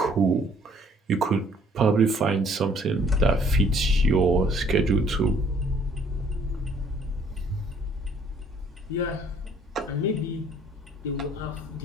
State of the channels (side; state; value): both; normal; correlation 0.60